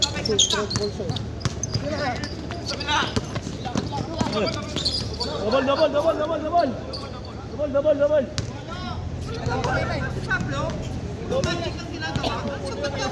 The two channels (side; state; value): both; identical; correlation 1.00